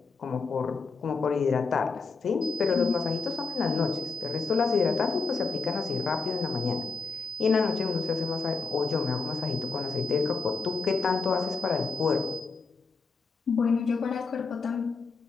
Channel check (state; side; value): quieter; right; 4.6 dB